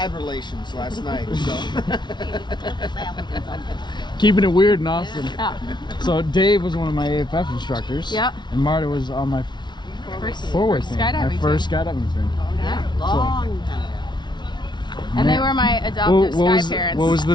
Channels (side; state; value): right; late; 0.21 ms